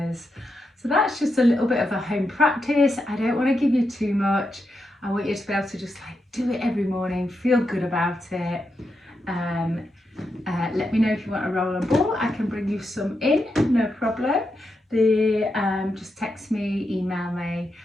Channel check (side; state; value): both; normal; correlation 0.85